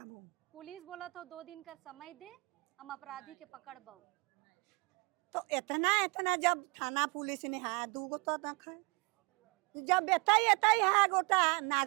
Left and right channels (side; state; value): left; quieter; 28.2 dB